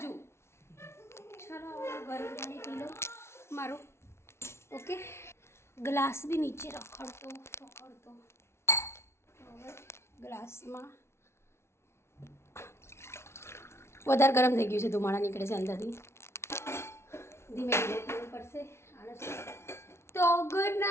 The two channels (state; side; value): late; right; 0.13 ms